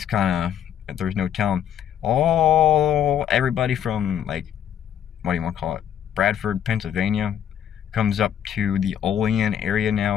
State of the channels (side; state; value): right; quieter; 9.5 dB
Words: kind of, there's no telling. Everybody from, like, what do you want to call it, Bradford, Pennsylvania, comes up to the Olean area